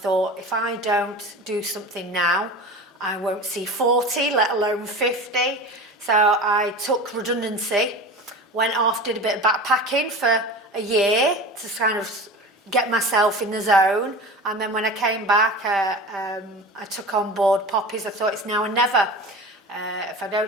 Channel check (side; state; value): both; normal; correlation 0.33